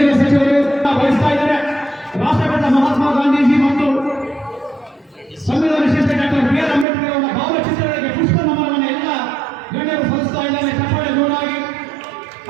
ಸಚಿವರು ವಹಿಸ್ತಾ ಇದ್ದಾರೆ. ರಾಷ್ಟ್ರಪಿತ ಮಹಾತ್ಮ ಗಾಂಧೀಜಿ ಮತ್ತು ಸಂವಿಧಾನ ಶಿಲ್ಪಿ ಡಾಕ್ಟರ್ BR ಅಂಬೇಡ್ಕರ್ ಅವರ ಭಾವಚಿತ್ರಗಳಿಗೆ ಪುಷ್ಪ ನಮನವನ್ನು ಎಲ್ಲ ಗಣ್ಯರು ಸಲ್ಲಿಸ್ತಾ ಇದ್ದಾರೆ. ಚಪ್ಪಾಳೆ ಜೋರಾಗಿ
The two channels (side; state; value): left; drops out; at 6.9 s